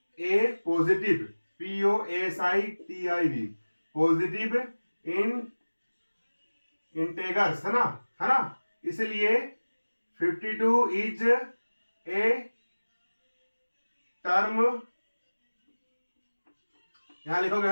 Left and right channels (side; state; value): both; inverted; correlation -1.00